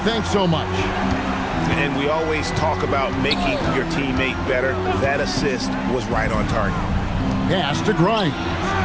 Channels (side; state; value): both; identical; correlation 1.00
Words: so much. And we always talk about making your teammate better. That assist was right on target. Pass to Grimes.